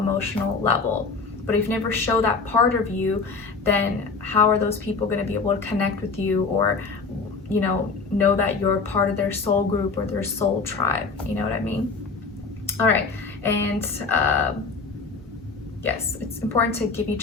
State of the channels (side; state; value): right; quieter; 4.5 dB